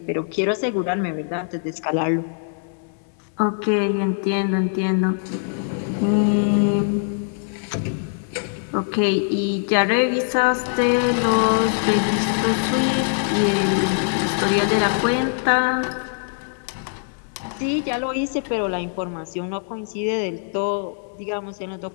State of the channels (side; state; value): right; silent; digital silence